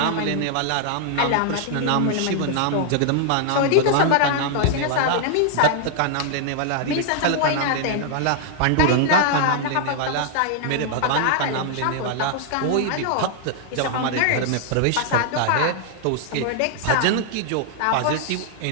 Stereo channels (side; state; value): both; different; correlation -0.01